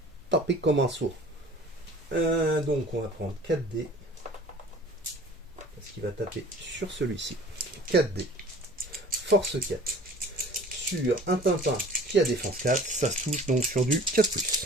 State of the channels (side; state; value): both; normal; correlation 0.47